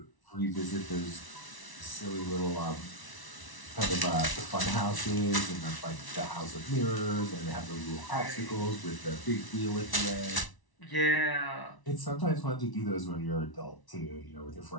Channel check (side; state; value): right; late; 1.0 ms